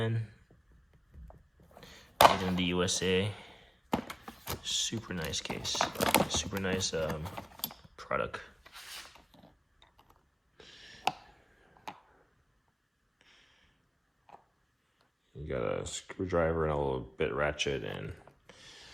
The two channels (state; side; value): identical; both; correlation 1.00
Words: made in the USA. Super nice case, super nice product. You got a screwdriver and a little bit ratchet, and